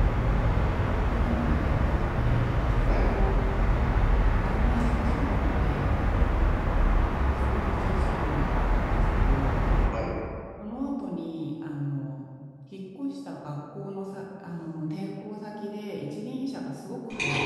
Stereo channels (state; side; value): identical; both; correlation 1.00